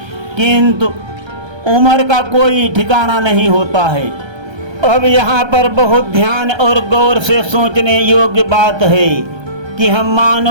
किंतु उम्र का कोई ठिकाना नहीं होता है। अब यहाँ पर बहुत ध्यान और गौर से सोचने योग्य बात है कि हम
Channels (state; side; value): late; left; 1.3 ms